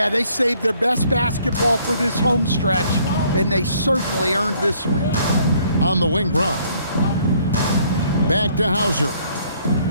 they saved their best basketball for this home stretch, and they certainly earned this win. On the wing, Brown. Back to Hauser.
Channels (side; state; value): both; inverted; correlation -0.63